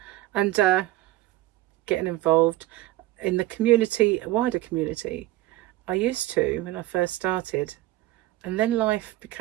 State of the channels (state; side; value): quieter; left; 16.5 dB